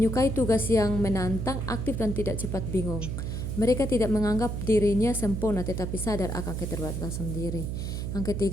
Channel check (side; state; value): right; noise; hum, 3 dB below the sound